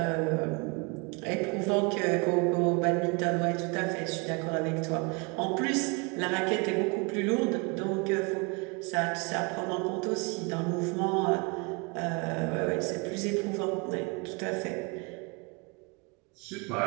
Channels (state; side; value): quieter; left; 30.0 dB